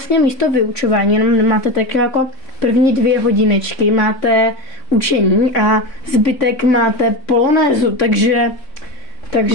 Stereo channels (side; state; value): right; late; 3.6 ms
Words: místo vyučování, jenom máte tak jako první 2 hodinečky, máte učení a zbytek máte polonézu, takže